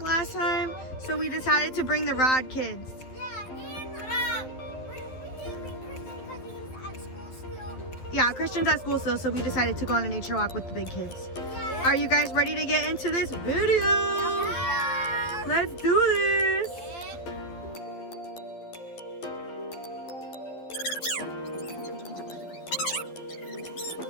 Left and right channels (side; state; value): right; late; 12 ms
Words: last time. So we decided to bring the Rod kids. Yeah, Christian's at school still, so we decided to go on a nature walk with the big kids. Are you guys ready to get into this video? Yeah. Let's do this.